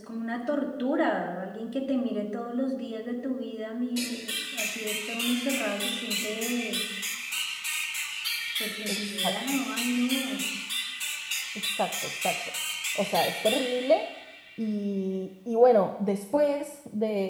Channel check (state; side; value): identical; both; correlation 1.00